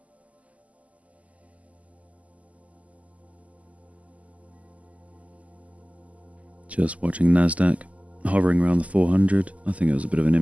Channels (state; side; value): late; left; 0.070 ms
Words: Just watching Nasdaq hovering around the 400. I think it was a bit of an